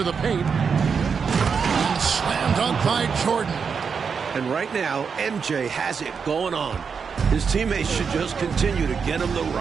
the paint. And slam dunk by Jordan. And right now, MJ has it going on. His teammates should just continue to get him the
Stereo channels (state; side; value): quieter; left; 6.0 dB